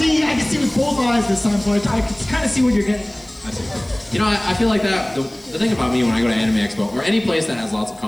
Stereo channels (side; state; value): left; noise; hiss, 28 dB below the sound